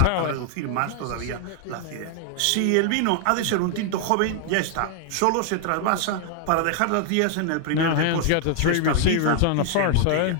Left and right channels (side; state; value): both; different; correlation 0.00